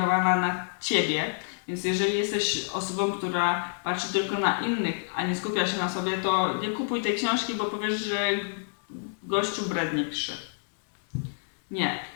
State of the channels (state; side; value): silent; right; digital silence